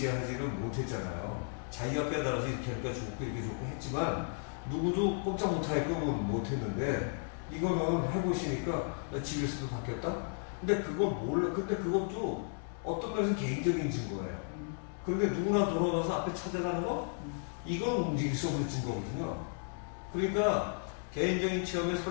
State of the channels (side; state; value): right; silent; 55 dB below the other